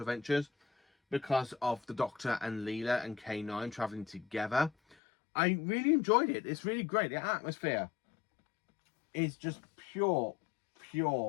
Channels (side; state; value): right; drops out; at 5.0 s